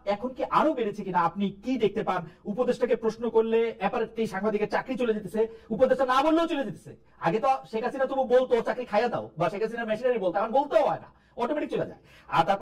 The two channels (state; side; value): identical; both; correlation 1.00